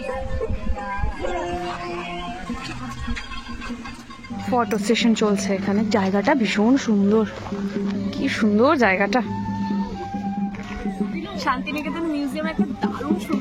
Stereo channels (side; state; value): both; identical; correlation 1.00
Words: ফটো সেশন চলছে এখানে। জায়গাটা ভীষণ সুন্দর, কি সুন্দর জায়গাটা। শান্তিনিকেতন মিউজিয়াম একটা দারুণ